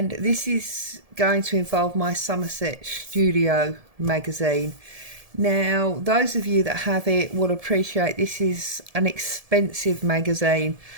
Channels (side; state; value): left; late; 1.7 ms